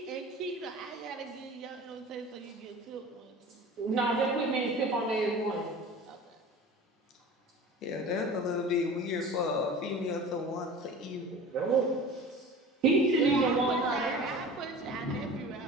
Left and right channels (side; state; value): both; normal; correlation 0.38